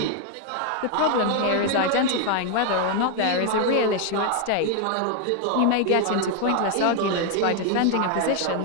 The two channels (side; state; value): both; different; correlation 0.00